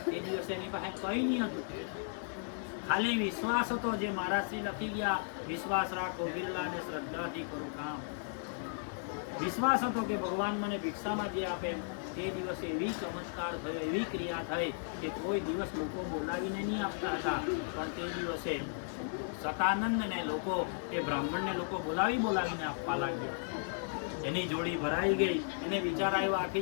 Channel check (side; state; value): right; silent; digital silence